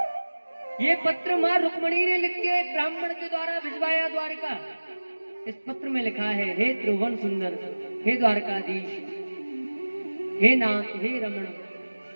ये पत्र मां रुक्मणी ने लिख के ब्राह्मण के द्वारा भिजवाया द्वारका। इस पत्र में लिखा है, हे त्रिभुवन सुंदर, हे द्वारकाधीश, हे नाथ, हे रमण,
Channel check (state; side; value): inverted; both; correlation -1.00